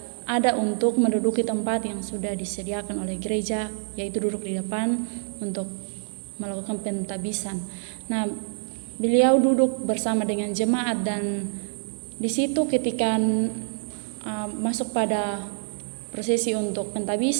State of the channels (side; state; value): left; silent; 61 dB below the other